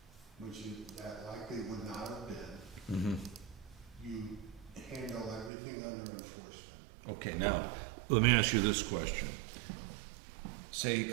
which that likely would not have been, Mm-hmm. you handle everything under enforcement. Okay, now, let me ask you this question. Say he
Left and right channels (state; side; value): drops out; left; at 5.5 s